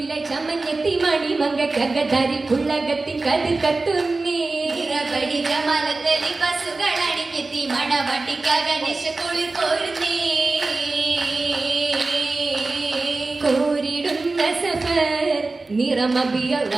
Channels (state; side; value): quieter; left; 3.5 dB